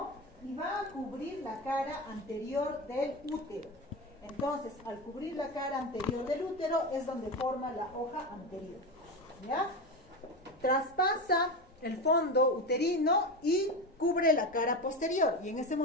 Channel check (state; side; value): normal; both; correlation 0.21